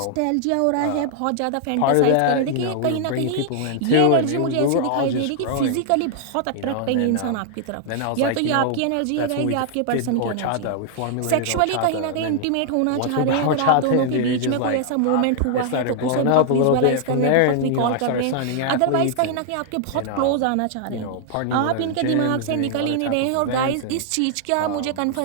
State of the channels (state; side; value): different; both; correlation -0.01